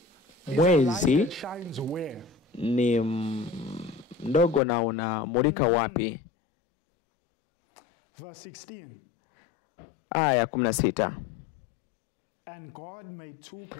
Mwezi light that shines where? ni mdogo na unamulika wapi? Verse 16. Aya ya 16. And God made two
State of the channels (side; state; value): right; drops out; at 4.6 s